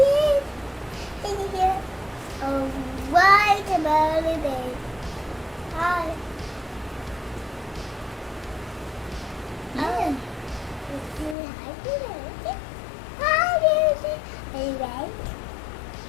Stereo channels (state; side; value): drops out; right; at 11.4 s